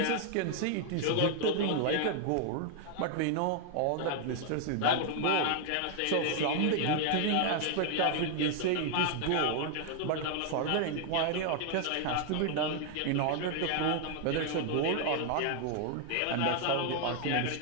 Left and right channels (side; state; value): both; different; correlation 0.00